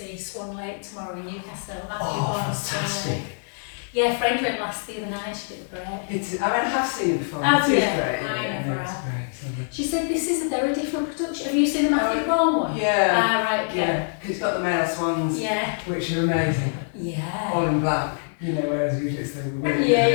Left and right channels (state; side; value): silent; right; 60 dB below the other